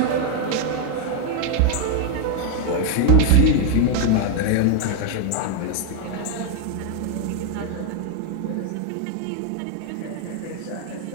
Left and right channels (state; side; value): different; both; correlation 0.01